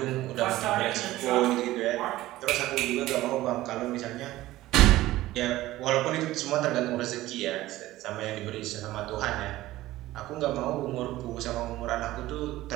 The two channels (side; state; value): left; quieter; 16.4 dB